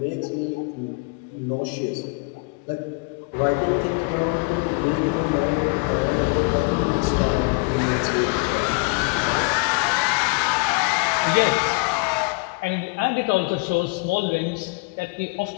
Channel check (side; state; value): right; quieter; 32.1 dB